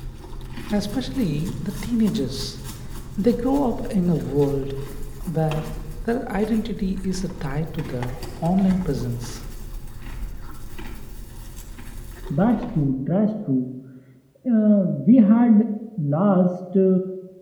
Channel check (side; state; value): both; identical; correlation 1.00